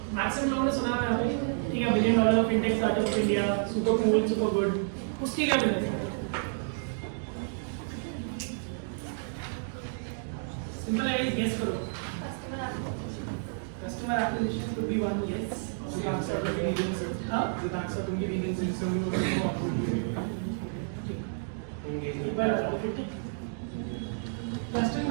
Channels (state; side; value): silent; left; digital silence